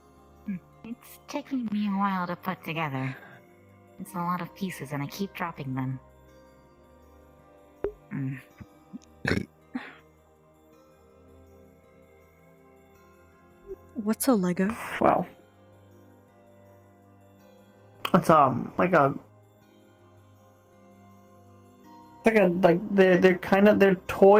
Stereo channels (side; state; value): both; identical; correlation 1.00